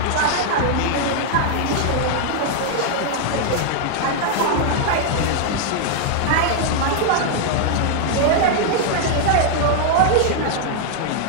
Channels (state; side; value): different; both; correlation 0.00